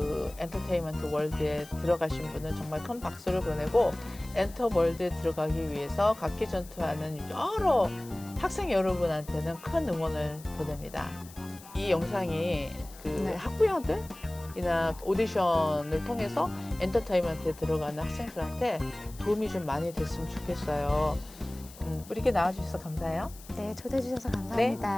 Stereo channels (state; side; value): noise; left; hiss, 19 dB below the sound